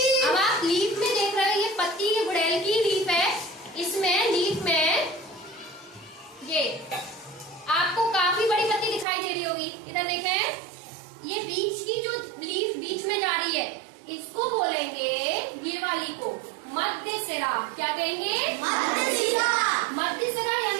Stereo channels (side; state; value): left; drops out; at 9.1 s